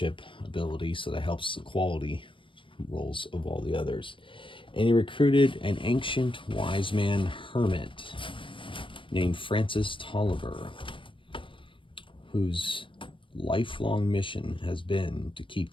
ability, so that helps the quality roles of all the others. And he recruited an ancient wise man hermit named Francis Tolliver, whose lifelong mission has been to keep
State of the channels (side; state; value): right; late; 0.25 ms